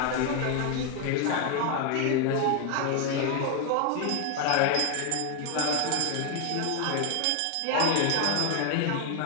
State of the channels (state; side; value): different; both; correlation 0.01